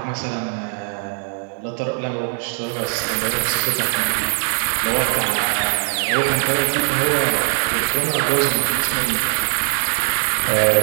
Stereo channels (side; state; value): left; silent; 65 dB below the other